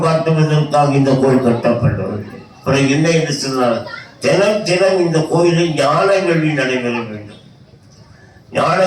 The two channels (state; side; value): identical; both; correlation 1.00